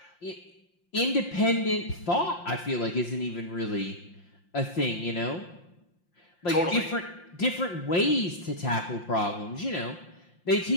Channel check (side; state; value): right; late; 5.7 ms